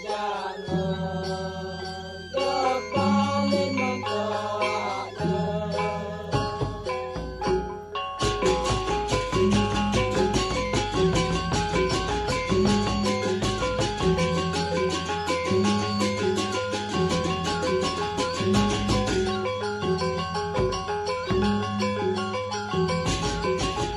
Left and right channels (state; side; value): identical; both; correlation 1.00